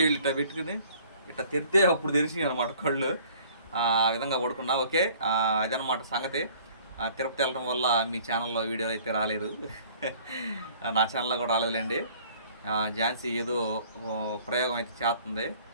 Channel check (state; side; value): inverted; both; correlation -0.54